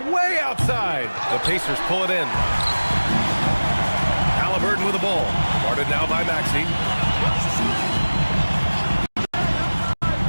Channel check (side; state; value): both; inverted; correlation -1.00